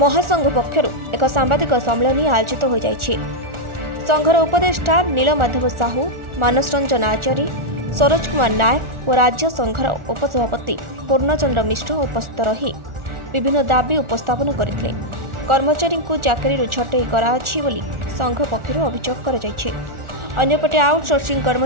पक्षर एक सांबादिक सम्मेलन आयोजित हो जाइछि। संघर उपदेष्टा नीलमाधव साहू, मानस रंजन आचार्य, सरोज कुमार नायक और राज्य संघर उपसभापति पूर्णचंद्र मिश्र उपस्थित रही विभिन्न दाबी उपस्थापन करथिले। कर्मचारी को चाकरी छटई कराछि बोली संघ पक्षर अभियोग कराଯାଇଛି। अन्यपटे आउटसोर्सिंग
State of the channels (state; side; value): late; left; 1.4 ms